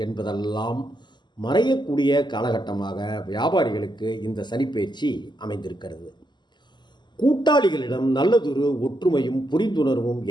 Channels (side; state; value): right; late; 0.21 ms